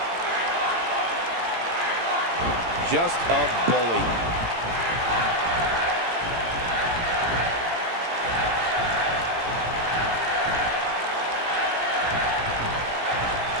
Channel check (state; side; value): late; left; 18 ms